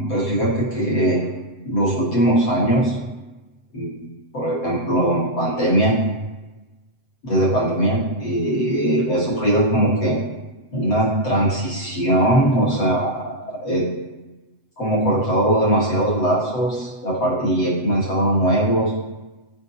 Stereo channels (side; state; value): right; late; 7.9 ms